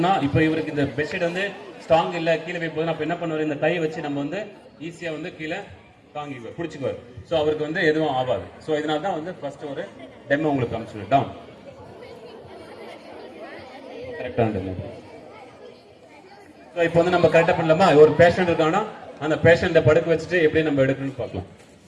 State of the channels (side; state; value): both; identical; correlation 1.00